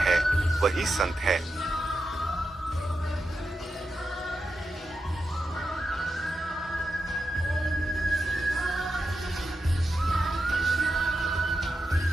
वही संत है।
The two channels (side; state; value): both; normal; correlation 0.88